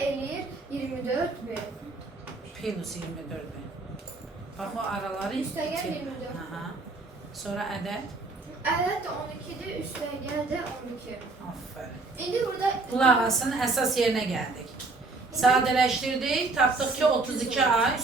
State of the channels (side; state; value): left; quieter; 3.5 dB